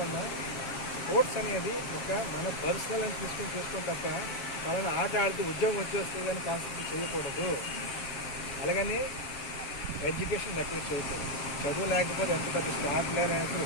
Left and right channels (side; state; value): right; late; 7.2 ms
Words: ఉన్న స్పోర్ట్స్ అనేది ఒక మన పర్సనల్ అని తీసుకొని చేసుకోవడం తప్ప వాళ్ళని ఆట ఆడితే ఉద్యోగం వచ్చేస్తుంది అని కాన్సెప్ట్ చేయకూడదు. అలాగని ఎడ్యుకేషన్ నెగ్లెక్ట్ చేయకూడదు. చదువు లేకపోతే ఎంత పెద్ద స్టార్ ప్లేయర్ అనేది